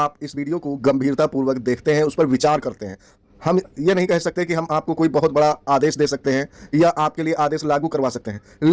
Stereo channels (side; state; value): both; identical; correlation 1.00